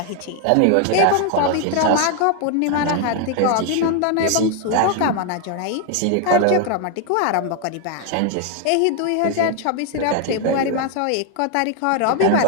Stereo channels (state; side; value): different; both; correlation 0.00